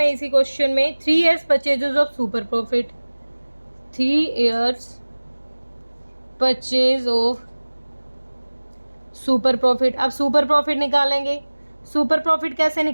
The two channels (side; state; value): both; inverted; correlation -1.00